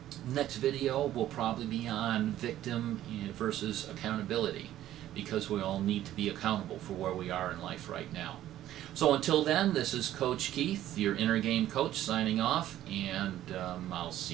next video will probably be on victim versus accountability, because we all need to be accountable for where we are in life right now. So until then, this is Coach Keith, your Inner Game Coach, signing off, and I'll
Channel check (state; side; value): quieter; left; 13.0 dB